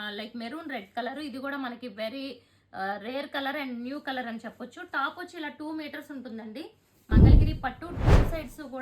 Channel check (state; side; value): identical; both; correlation 1.00